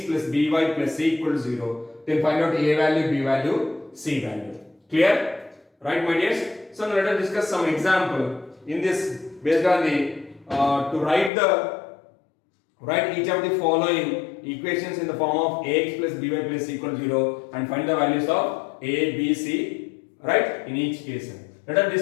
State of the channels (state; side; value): drops out; right; at 11.3 s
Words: plus by plus c equal to 0. Then find out a value, b value, c value. Clear? Right, my dears? So now let us discuss some example in this based on the to write each of the following equations in the form of ax plus by plus c equal to 0 and find the values of a, b, c, right, in each case. Let us